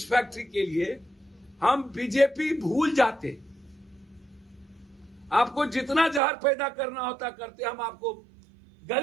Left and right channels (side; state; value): left; drops out; at 6.2 s